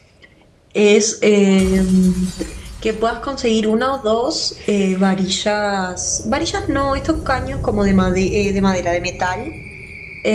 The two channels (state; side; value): identical; both; correlation 1.00